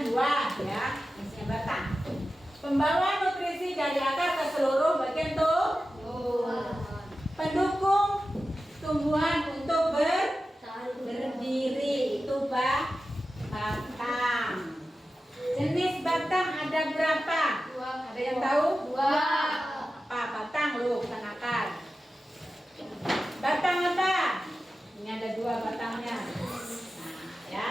buah ya, isinya batang. Pembawa nutrisi dari akar ke seluruh bagian tumbuhan. Pendukung tumbuhan untuk berdiri itu batang. Jenis batang ada berapa? Ada yang tahu? Apa batang loh, bukan akar. Batang apa? Ini ada 2 batangnya. Nah,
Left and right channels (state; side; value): normal; both; correlation 0.93